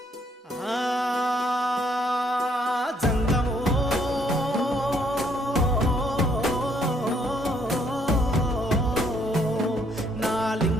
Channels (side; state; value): both; normal; correlation 0.68